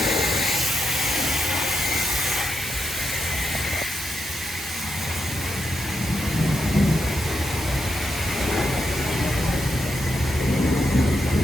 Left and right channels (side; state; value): both; normal; correlation 0.84